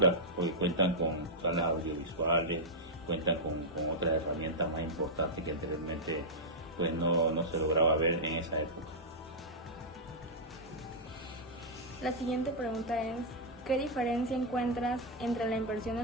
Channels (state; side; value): normal; both; correlation -0.07